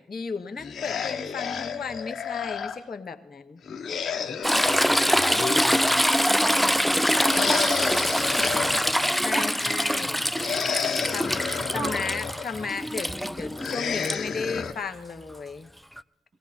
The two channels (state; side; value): normal; both; correlation 0.92